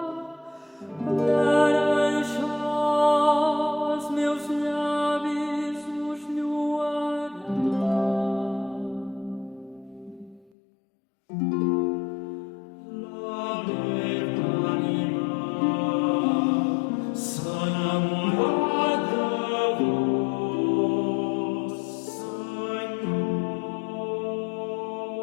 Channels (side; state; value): right; drops out; at 10.5 s